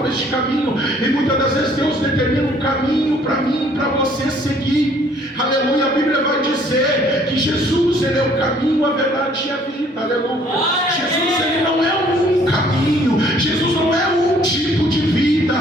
este caminho. E muitas das vezes Deus determina um caminho para mim, para você seguir. Aleluia, a Bíblia vai dizer que Jesus, ele é o caminho, a verdade e a vida. Aleluia. Jesus, ele não é um caminho. Jesus não é um tipo de vida.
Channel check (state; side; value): normal; both; correlation 0.60